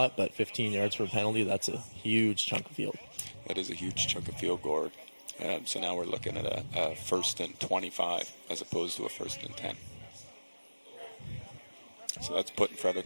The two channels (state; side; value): inverted; both; correlation -1.00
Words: but 15 yards for a penalty, that's a huge chunk of field. That is a huge chunk of field, Gord. So now we're looking at a 1st and 25 as opposed to a 1st and 10. So that's putting